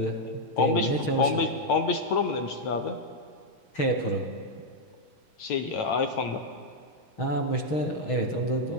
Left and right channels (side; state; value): right; late; 6.3 ms